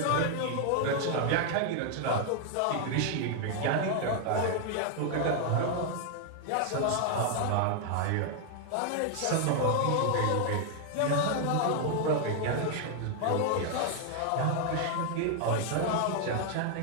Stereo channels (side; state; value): both; different; correlation 0.00